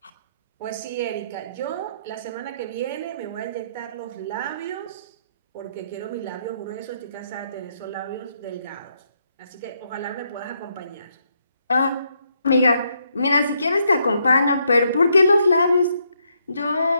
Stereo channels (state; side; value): inverted; both; correlation -0.76